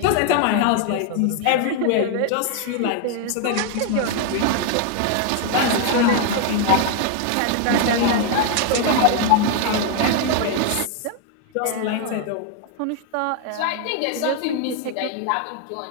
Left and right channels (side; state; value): both; different; correlation 0.00